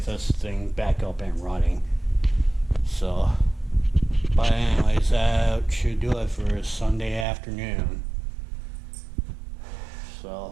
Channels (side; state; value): left; drops out; at 7.2 s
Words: this thing back up and running. So, but anyways, that should do it for Sunday afternoon.